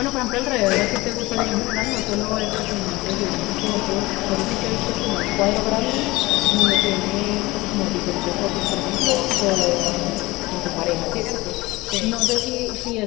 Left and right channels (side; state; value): right; quieter; 20.7 dB